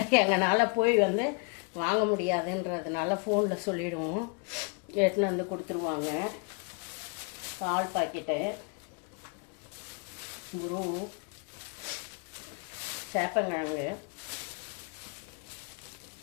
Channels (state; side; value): quieter; right; 33.8 dB